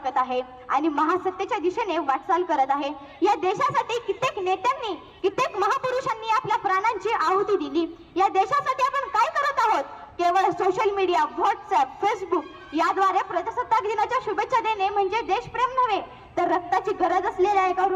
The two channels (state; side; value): identical; both; correlation 1.00